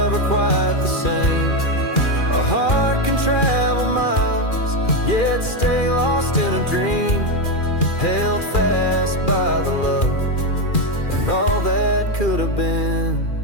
quite the same. A heart can travel miles, yet stay lost in a dream, held fast by the love and all that could have been.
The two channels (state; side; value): late; right; 2.4 ms